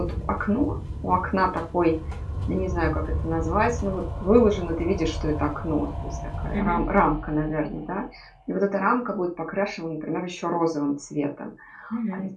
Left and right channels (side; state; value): both; identical; correlation 1.00